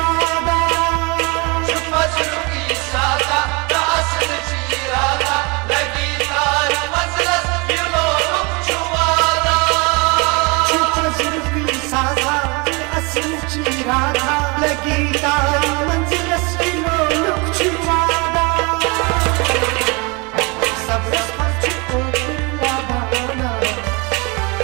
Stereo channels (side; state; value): left; quieter; 28.9 dB